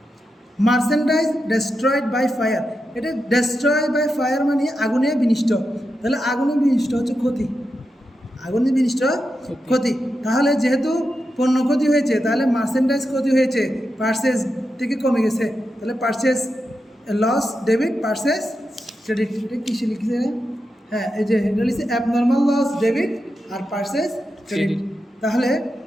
Merchandise destroyed by fire, এটা ডেস্ট্রয় বাই ফায়ার মানে আগুনে বিনষ্ট, তাহলে আগুনে বিনষ্ট হচ্ছে ক্ষতি, আগুনে বিনষ্ট ক্ষতি। তাহলে যেহেতু পণ্য ক্ষতি হয়েছে তাহলে মার্চেন্ডাইজ ক্ষতি হয়েছে, পার্সেস থেকে কমে গেছে, তাহলে purchase loss debit, purchase credit. এটা কিসে লিখেছে? হ্যাঁ, এই যে এটা লিখছে অ্যাবনর্মাল লস ডেবিট আর পার্সেস ক্রেডিট। তাহলে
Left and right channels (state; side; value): normal; both; correlation 0.88